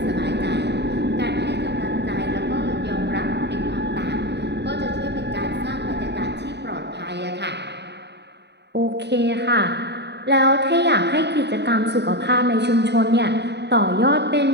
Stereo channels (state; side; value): late; left; 0.50 ms